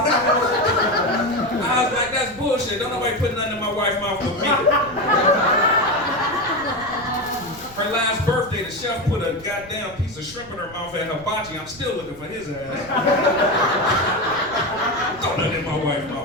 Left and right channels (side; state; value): right; noise; rumble, 20 dB below the sound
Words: was like, that's bullshit. Don't nobody put nothing in my wife's mouth but me. Her last birthday, the chef put a goddamn piece of shrimp in her mouth at hibachi. I'm still looking for his ass. Throw nothing in my wife's